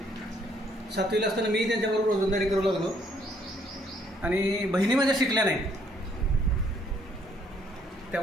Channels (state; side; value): normal; both; correlation 0.67